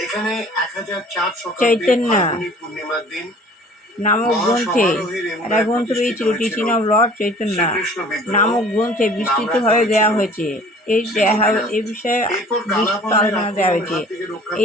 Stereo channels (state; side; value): normal; both; correlation 0.49